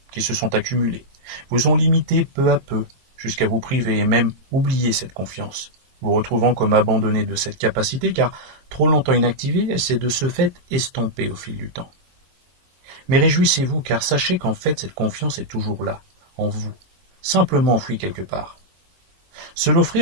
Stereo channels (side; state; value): left; late; 22 ms